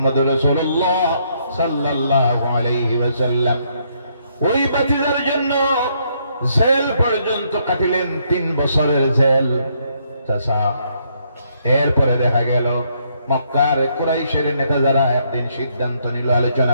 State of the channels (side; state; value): both; inverted; correlation -0.72